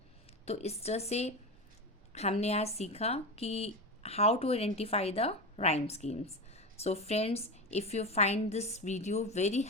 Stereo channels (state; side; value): normal; both; correlation 0.21